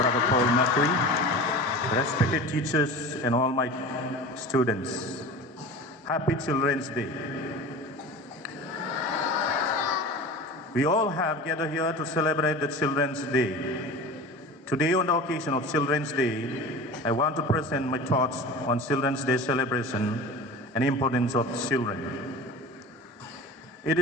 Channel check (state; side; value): normal; both; correlation 0.34